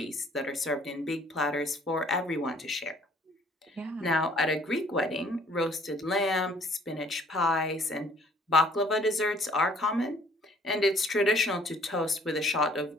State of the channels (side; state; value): both; normal; correlation 0.58